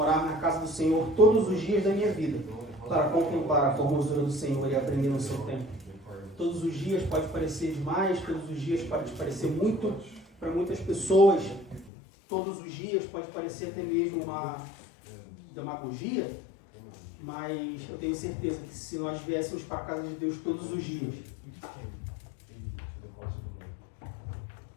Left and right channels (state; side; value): drops out; right; at 11.9 s